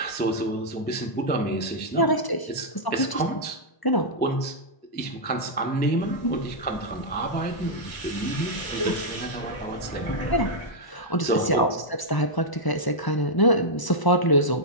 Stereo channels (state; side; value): late; right; 1.0 ms